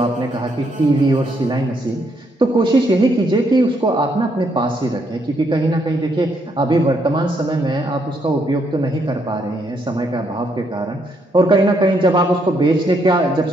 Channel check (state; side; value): normal; both; correlation 0.74